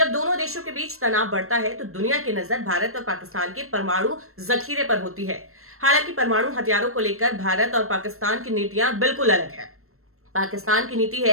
दोनों देशों के बीच तनाव बढ़ता है तो दुनिया की नजर भारत और पाकिस्तान के परमाणु जखीरे पर होती है। हालांकि परमाणु हथियारों को लेकर भारत और पाकिस्तान की नीतियां बिल्कुल अलग है। पाकिस्तान की नीति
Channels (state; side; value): late; left; 0.62 ms